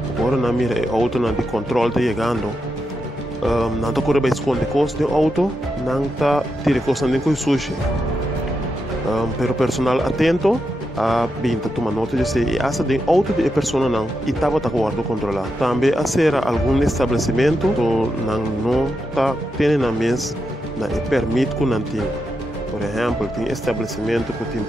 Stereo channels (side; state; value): both; normal; correlation 0.86